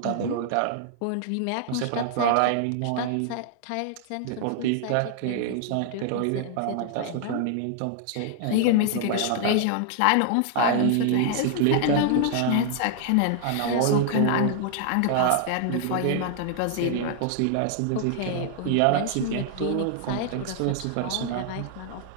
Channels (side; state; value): both; different; correlation 0.00